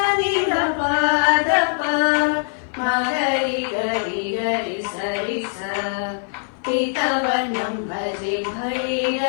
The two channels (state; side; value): silent; right; 56 dB below the other